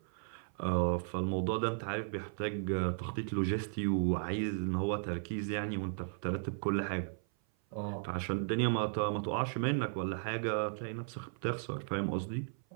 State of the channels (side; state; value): left; silent; 54 dB below the other